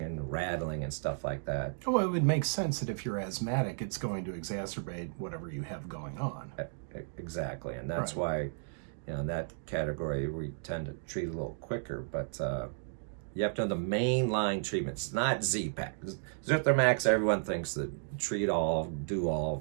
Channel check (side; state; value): left; silent; digital silence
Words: and rattling and stuff like that. Well, it would make sense that if you're asthmatic, it's going to exacerbate whatever you have going on. Exactly. And that's why, in that category, we tend to treat a little quicker. But you have to know the mainline treatments. It's not Z-Pak. Zithromax, everyone thinks that treat all, do